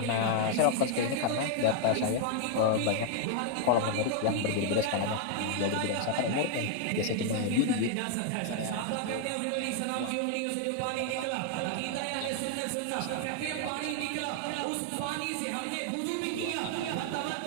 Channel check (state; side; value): different; both; correlation 0.00